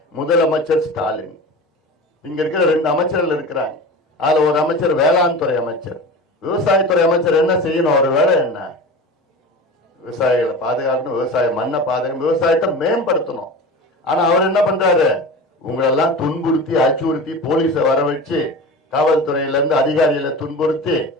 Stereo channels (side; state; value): both; normal; correlation 0.32